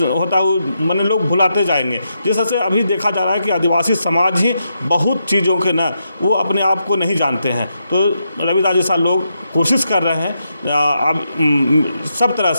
होता है मैंने लोग भुलाते जाएंगे। जैसे अभी देखा जा रहा है कि आदिवासी समाज ही बहुत चीज़ों के न वो अपने आप को नहीं जानते हैं। तो रविदास जैसा लोग कोशिश कर रहे हैं अब सब तरह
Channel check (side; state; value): both; inverted; correlation -0.83